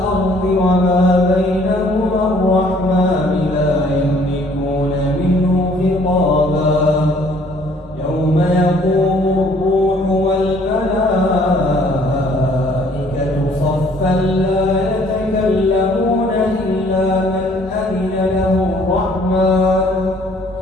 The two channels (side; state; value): both; normal; correlation 0.59